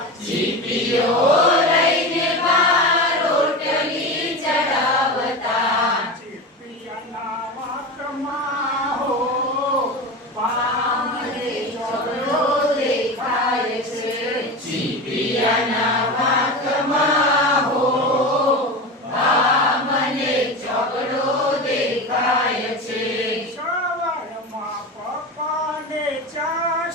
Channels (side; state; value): both; normal; correlation 0.25